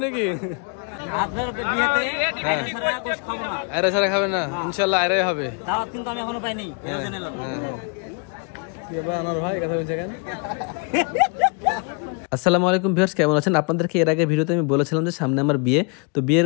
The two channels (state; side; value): quieter; right; 35.3 dB